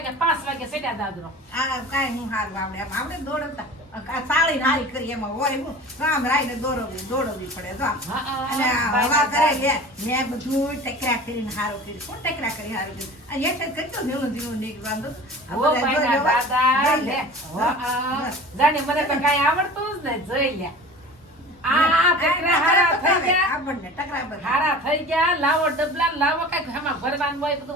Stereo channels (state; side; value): normal; both; correlation 0.39